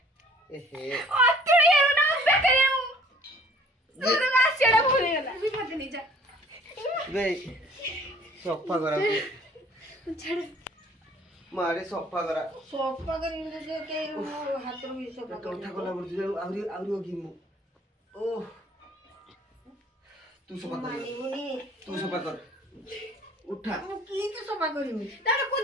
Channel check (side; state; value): both; normal; correlation 0.54